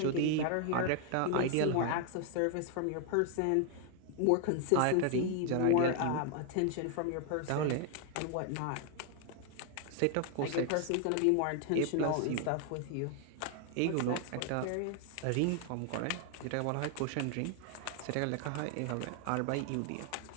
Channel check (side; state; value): both; different; correlation 0.00